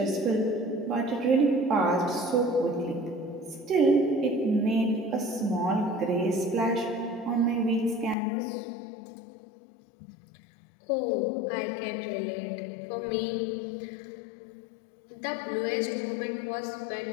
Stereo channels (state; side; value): drops out; right; at 8.2 s